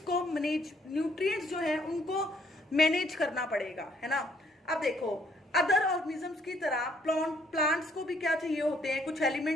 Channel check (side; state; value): both; normal; correlation 0.66